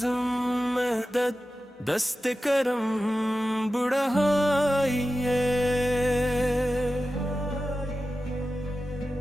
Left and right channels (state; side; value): normal; both; correlation 0.93